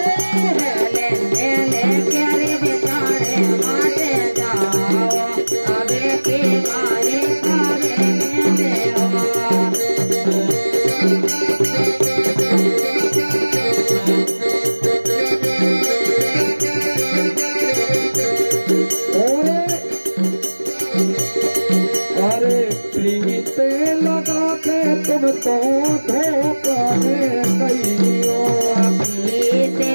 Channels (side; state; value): both; inverted; correlation -1.00